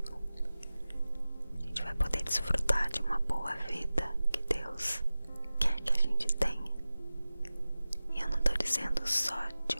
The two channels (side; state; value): both; inverted; correlation -0.96